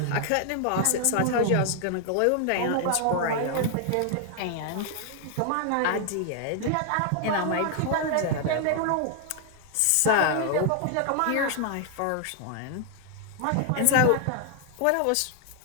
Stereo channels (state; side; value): different; both; correlation 0.00